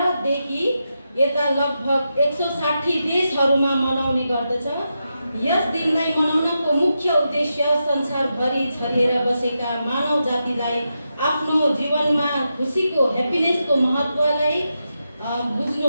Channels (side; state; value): both; inverted; correlation -0.87